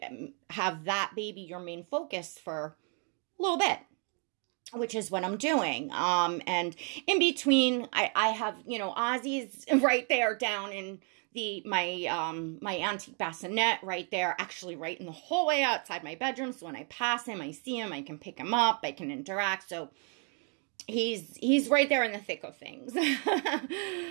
have that baby your main focus for a little bit, which is what I'm doing. And in between, I have, you know, Ozzy's right there down in my antique bassinet right there, actually right in the hallway outside my bedroom. So when I pass him, I see him, I can pick him up, I can interact. So he's right there in the thick of things.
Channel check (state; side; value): quieter; left; 39.4 dB